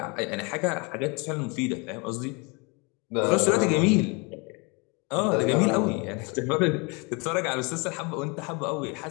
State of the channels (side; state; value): right; quieter; 30.1 dB